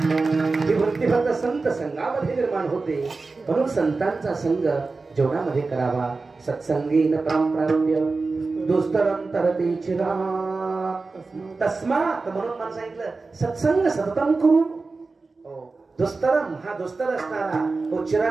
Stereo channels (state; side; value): quieter; left; 3.9 dB